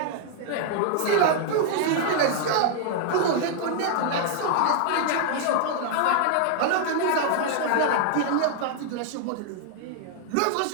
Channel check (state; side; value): different; both; correlation 0.00